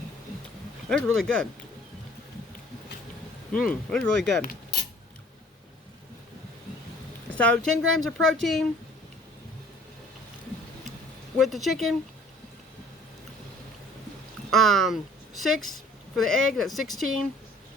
It's really good. It's really good. So 10 grams of protein with the chicken. 6 for the egg, that's 16.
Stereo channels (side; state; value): both; normal; correlation 0.53